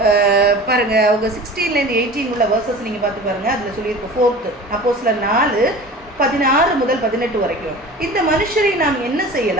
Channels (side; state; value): both; normal; correlation 0.38